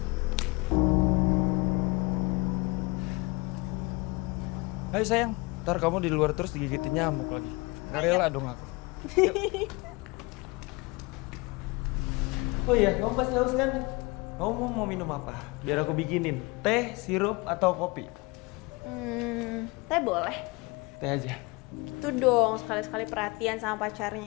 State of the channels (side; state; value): right; quieter; 24.9 dB